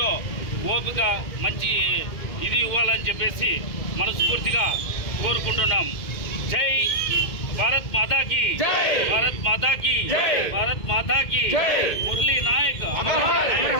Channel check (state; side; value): late; right; 2.1 ms